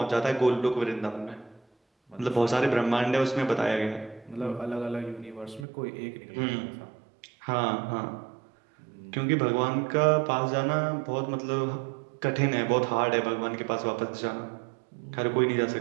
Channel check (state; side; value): drops out; left; at 5.7 s